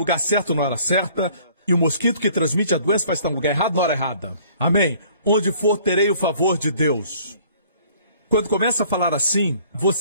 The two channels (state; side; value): inverted; both; correlation -0.55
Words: certo na hora certa. E o mosquito que transmite a doença vai estar no lugar errado na hora errada. Amém? Onde for, terei o favor de Deus. Quando começa a falar assim,